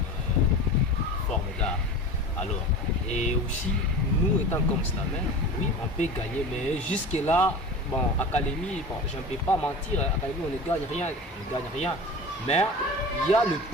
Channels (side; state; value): both; normal; correlation 0.34